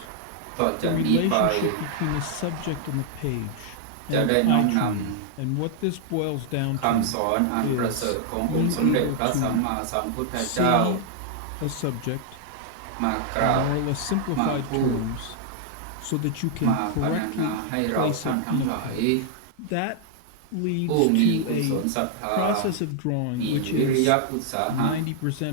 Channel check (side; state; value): both; different; correlation -0.01